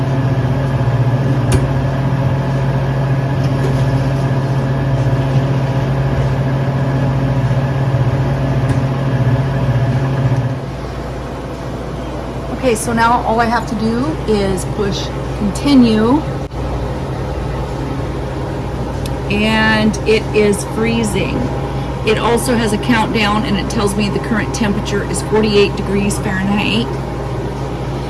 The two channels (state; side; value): identical; both; correlation 1.00